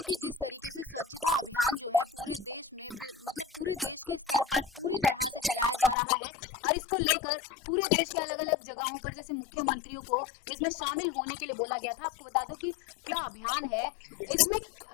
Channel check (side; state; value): right; drops out; at 6.0 s